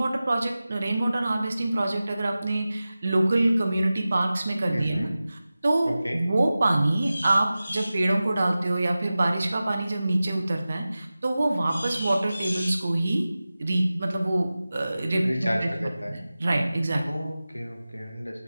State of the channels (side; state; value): both; inverted; correlation -0.96